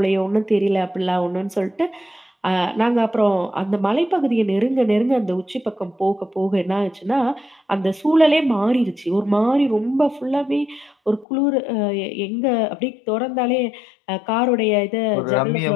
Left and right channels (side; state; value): right; drops out; at 11.2 s